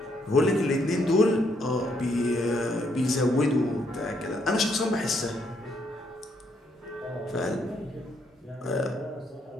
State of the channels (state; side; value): normal; both; correlation 0.73